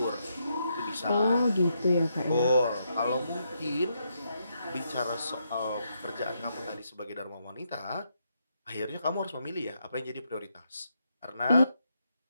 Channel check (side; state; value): both; inverted; correlation -0.80